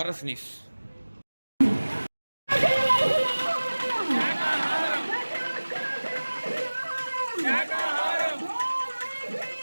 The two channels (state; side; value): inverted; both; correlation -1.00